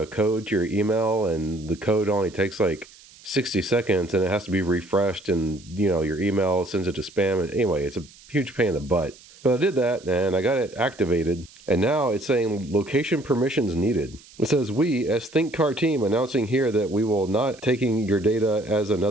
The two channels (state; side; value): noise; right; hiss, 23 dB below the sound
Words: code to your email, and the code only takes like 60 seconds, and it has to be refreshed, and, you know, your email sends it to spam. And anyway, it's a huge pain in the butt. But I did that, and I got it activated. And now it's saying location permissions needed. It says, we, as Think Car team, announcing here that we will not taking your data as